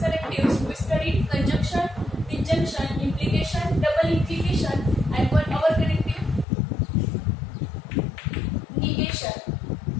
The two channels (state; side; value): drops out; right; at 6.5 s